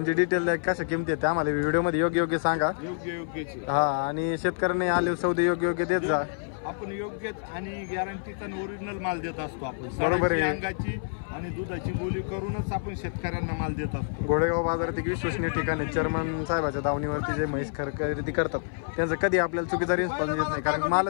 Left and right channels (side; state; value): right; silent; 57 dB below the other